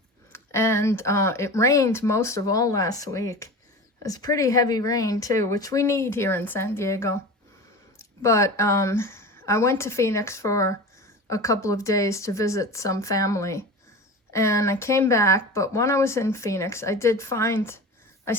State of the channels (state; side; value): normal; both; correlation 0.32